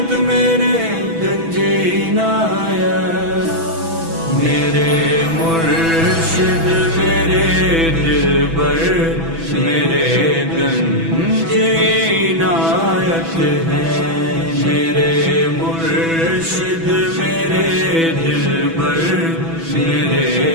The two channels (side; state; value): left; late; 6.1 ms